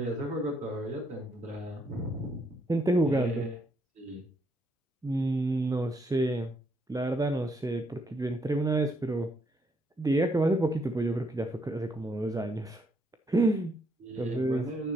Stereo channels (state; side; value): normal; both; correlation 0.74